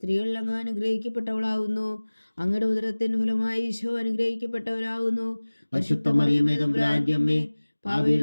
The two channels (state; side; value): inverted; both; correlation -1.00